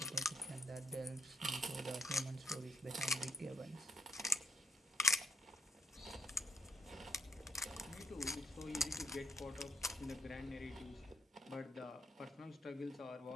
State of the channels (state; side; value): normal; both; correlation 0.75